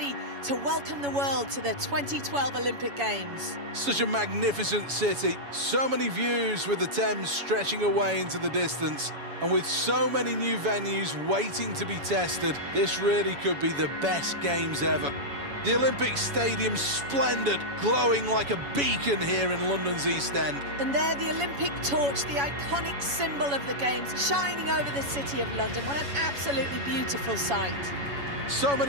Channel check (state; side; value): late; left; 7.1 ms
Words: to welcome the world to the 2012 Olympic Games. Such a magnificent city, so many views with the Thames stretching away into the distance. And with so many new venues waiting to be tested, this really could be the best games ever. The Olympic Stadium's splendid, glowing like a beacon here in London's East End. And there, the Olympic torch, the iconic symbol of the Games, shining over the city of London. What an absolutely beautiful sight. So